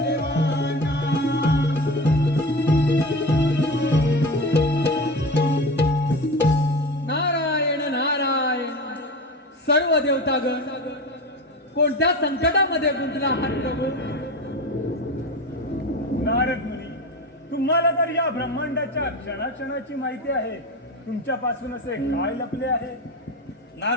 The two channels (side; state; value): both; normal; correlation 0.27